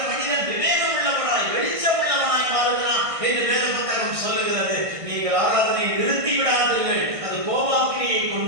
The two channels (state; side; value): late; left; 1.6 ms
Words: மனிதன் விவேகம் உள்ளவனாய் வெளிச்சம் உள்ளவனாய் மாறுகிறான் என்று வேத புத்தகம் சொல்லுகிறது. நீங்கள் ஆராதனை நிறுத்தி விடாதீர்கள், அது கோபாக்கினியை